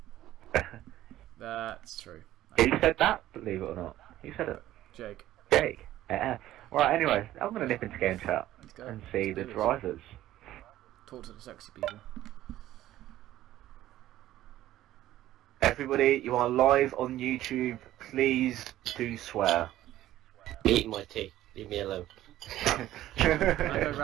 That's true. Who said that? Believe it or not. Who said it? Jake. Jake? Yeah. Right, anyway, I'm going to nip into game chat and see the drivers. Talk to the sexy people. Everybody, you are live on YouTube. Please do swear. Eating my tea. Leave me alone. Can I go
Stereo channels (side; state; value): left; quieter; 14.1 dB